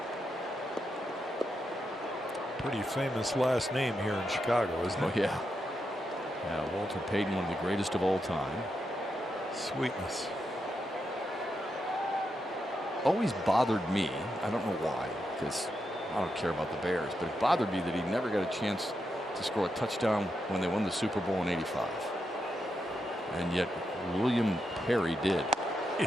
Pretty famous last name here in Chicago, isn't it? Oh, yeah. Yeah, Walter Payton, one of the greatest of all time. Sweetness. Always bothered me. I don't know why, because I don't care about the Bears, but it bothered me that he never got a chance to score a touchdown when they won the Super Bowl in '85. And yet William Perry did.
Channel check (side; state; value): both; normal; correlation 0.84